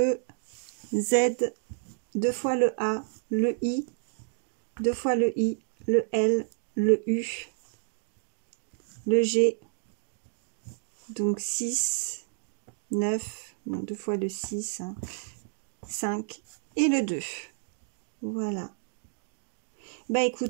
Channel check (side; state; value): left; silent; 56 dB below the other